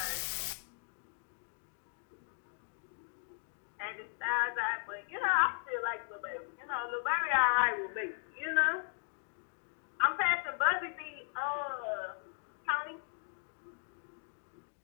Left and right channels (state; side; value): silent; right; 53 dB below the other